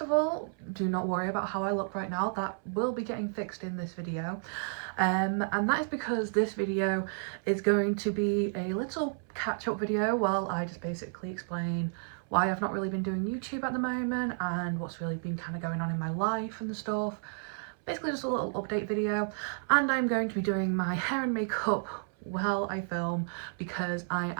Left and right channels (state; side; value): silent; left; 57 dB below the other